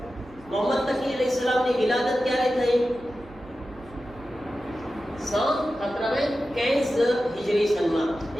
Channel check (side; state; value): right; noise; hum, 22 dB below the sound